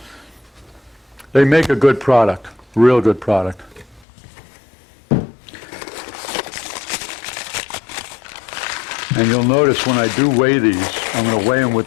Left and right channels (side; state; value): right; drops out; at 4.0 s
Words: They make a good product, real good product. And you'll notice when I do weigh these, I'm going to weigh them with